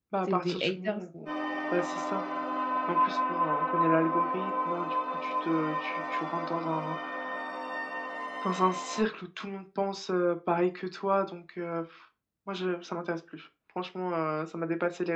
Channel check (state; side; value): identical; both; correlation 1.00